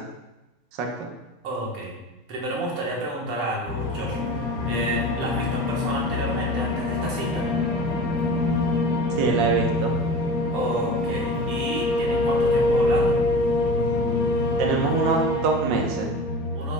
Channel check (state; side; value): normal; both; correlation 0.34